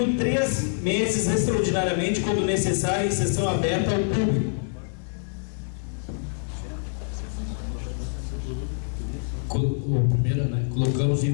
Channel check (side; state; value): right; silent; 61 dB below the other